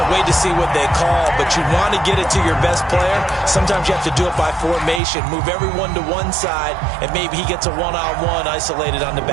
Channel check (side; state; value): left; drops out; at 5.0 s